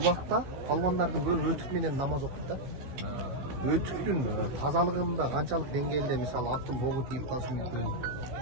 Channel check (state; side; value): late; left; 15 ms